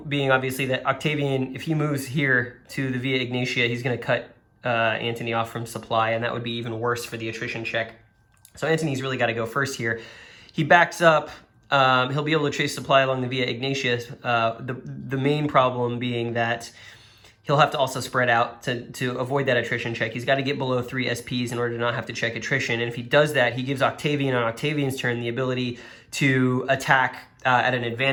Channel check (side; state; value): both; identical; correlation 1.00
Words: being obviously that Octavian, if he moves here to the Via Egnatia, he's going to cut Antony off from supply, and that would be even worse for the attrition check. So Antony's really got to go first here. He backs up. He'll be able to chase supply along the Via Egnatia. The main problem being that he'll have to also spread out to avoid that attrition check. He's got to get below 3 SPs in order to not have to check attrition. And if he does that, he gives Octavian on Octavian's turn the ability to attack at an